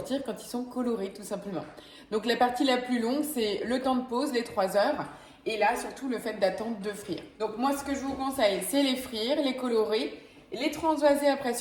quand ils sont colorés, tout simplement. Donc, la partie la plus longue, c'est le temps de pause, les 3 heures. Et là, surtout, le fait d'attendre de frire. Donc, moi, ce que je vous conseille, c'est les frire, les colorer, les transvaser après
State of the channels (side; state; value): both; identical; correlation 1.00